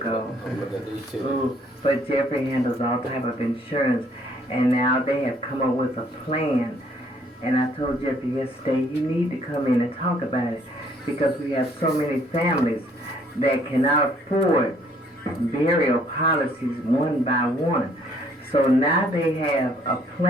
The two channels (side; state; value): both; normal; correlation 0.63